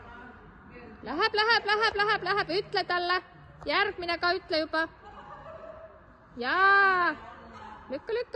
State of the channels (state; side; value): identical; both; correlation 1.00